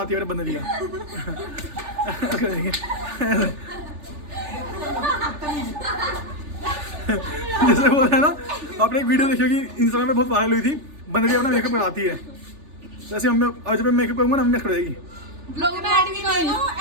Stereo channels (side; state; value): left; late; 3.4 ms